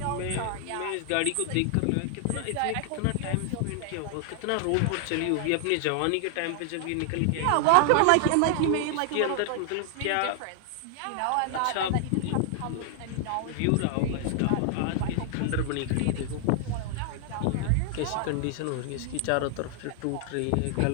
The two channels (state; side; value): different; both; correlation 0.00